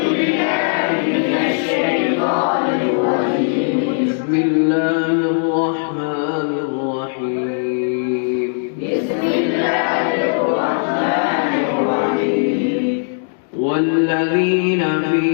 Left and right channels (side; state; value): right; silent; digital silence